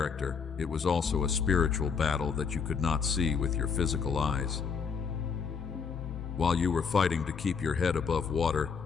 it was also a spiritual battle that you could not see with your physical eyes. While you were fighting to keep your head above water,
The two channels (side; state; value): right; quieter; 6.0 dB